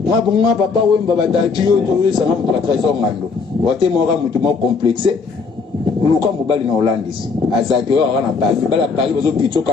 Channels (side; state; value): right; quieter; 4.9 dB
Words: ngabonga papa wemba batati yo to sanga mutu trésor ngano wote mora mutu mo complexe luka mobali na Hollandis azaki yo na Paris bala Paris bazo pitso